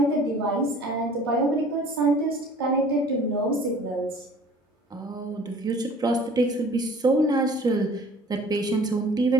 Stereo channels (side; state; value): both; normal; correlation 0.48